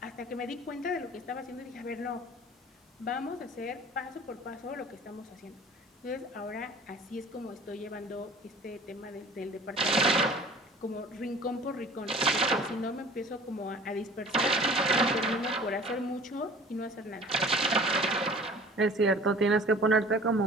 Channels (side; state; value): both; normal; correlation 0.45